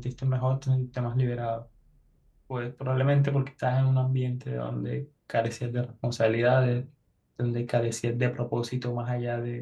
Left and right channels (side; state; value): both; identical; correlation 1.00